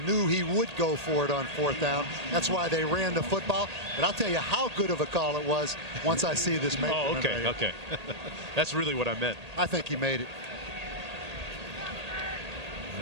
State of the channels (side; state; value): left; late; 1.8 ms